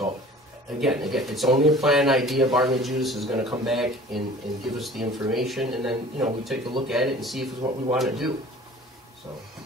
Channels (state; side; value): normal; both; correlation 0.45